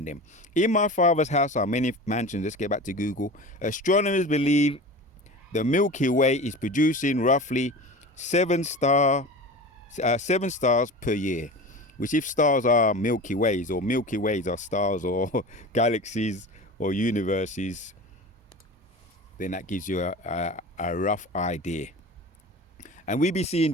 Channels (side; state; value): both; normal; correlation 0.33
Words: them. In my Father's house are many mansions. Let's get back to Google. Astronomers believe the Milky Way is producing roughly 7 stars per year, which if stars are Milky Ways, or Milky Ways are stars or galaxies or universes, then that gives you a rough idea. And we be seeing